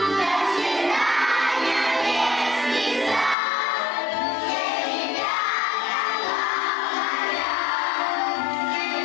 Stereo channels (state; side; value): drops out; right; at 3.4 s